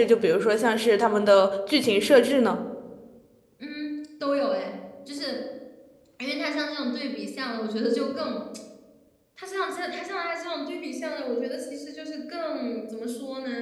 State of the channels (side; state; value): both; identical; correlation 1.00